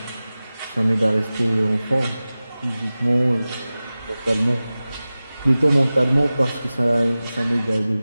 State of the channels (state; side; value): inverted; both; correlation -0.96